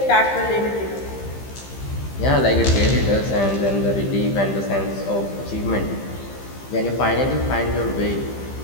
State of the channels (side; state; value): right; late; 15 ms